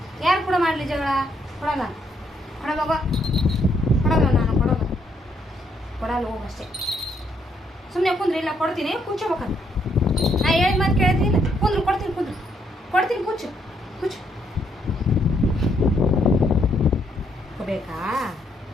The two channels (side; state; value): both; normal; correlation 0.73